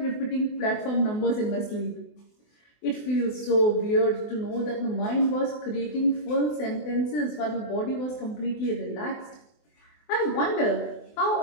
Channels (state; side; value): late; right; 24 ms